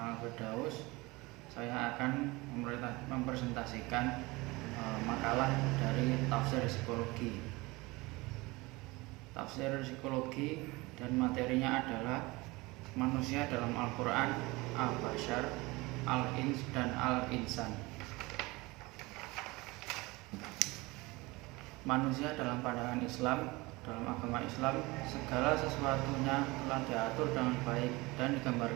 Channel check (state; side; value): quieter; left; 22.8 dB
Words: Firdaus. Saya akan mempresentasikan makalah dari tafsir psikologi. Tafsir psikologi dan materinya adalah manusia dalam Al-Quran, Al-Bashar, Al-Ins, dan Al-Insan. Manusia dalam pandangan Islam. Dalam agama Islam, segala sesuatunya telah diatur dengan baik dan